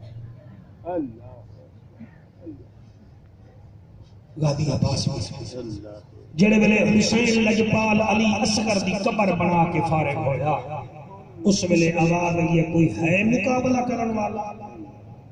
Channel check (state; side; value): identical; both; correlation 1.00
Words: اللہ غازی عباس جڑے ویلے حسین لجپال علی اصغر دی قبر بنا کے فارغ ہویا اس ویلے آواز آئی کوئی ہے مقابلہ کرن والا